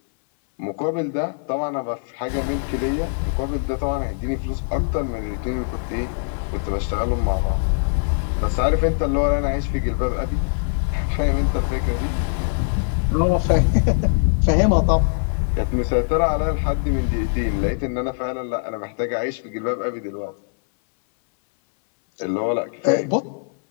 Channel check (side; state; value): right; silent; 61 dB below the other